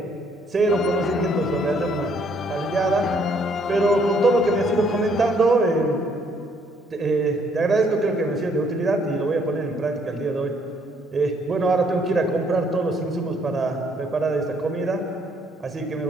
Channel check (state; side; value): normal; both; correlation 0.66